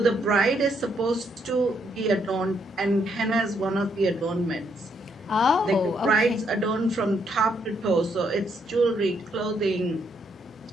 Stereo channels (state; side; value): normal; both; correlation 0.74